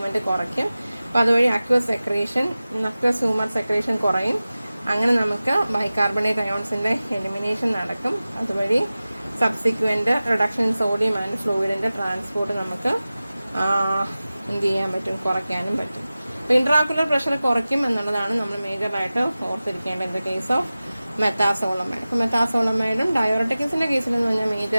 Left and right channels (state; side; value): inverted; both; correlation -0.97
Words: കുറയ്ക്കും. അപ്പോൾ അതുവഴി അക്വസ് ഹ്യൂമർ സെക്രീഷൻ കുറയും. അങ്ങനെ നമുക്ക് ബൈകാർബണേറ്റ് അയോൺസിന്റെ എലിമിനേഷൻ നടക്കും. അതുവഴി subsequent reduction in sodium and ഫ്ലൂയിഡിന്റെ ട്രാൻസ്പോർട്ട് നമുക്ക് എന്ത് ചെയ്യാൻ പറ്റും? കുറയ്ക്കാനും പറ്റും. അപ്പോൾ ഇൻട്രാക്കുലർ പ്രഷർ കുറയ്ക്കും എന്നുള്ളതാണ് നമ്മൾ മേജറായിട്ട് ഓർത്തിരിക്കേണ്ടത് in the case of methazolamide. അപ്പോൾ മെത്താസോളമൈഡും ഡയോറട്ടിക്സിന്റെ കേസിലെന്ന് പറഞ്ഞാൽ